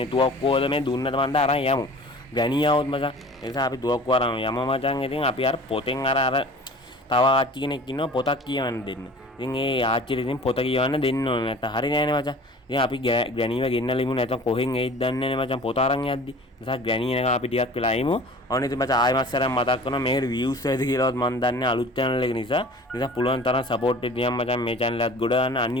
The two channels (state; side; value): normal; both; correlation 0.44